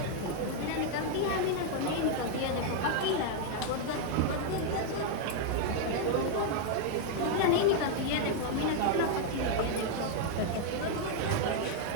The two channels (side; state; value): both; different; correlation 0.00